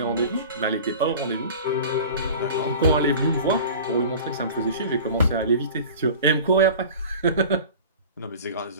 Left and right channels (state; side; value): inverted; both; correlation -0.39